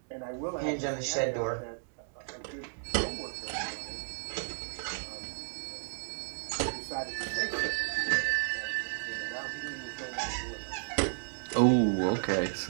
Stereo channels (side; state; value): left; silent; digital silence